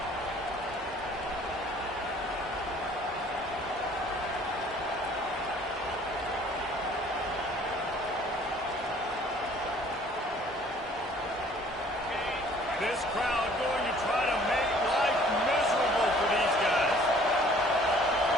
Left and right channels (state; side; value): normal; both; correlation 0.55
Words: This crowd going to try to make life miserable for these guys.